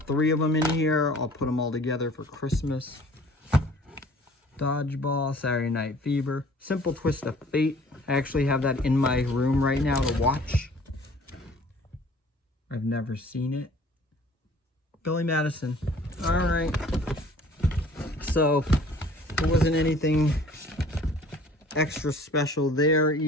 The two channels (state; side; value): normal; both; correlation 0.52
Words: of them in here, I'll put them all together for Christmas. Dodgeball, Saturday Night Fever, Simple Twist of Fate. I actually have that in my room right now to watch. I've never seen it. Billy Madison. All right. So there wasn't anything extra special there